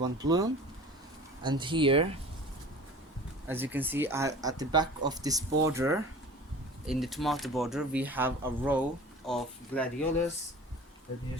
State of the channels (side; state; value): both; normal; correlation 0.41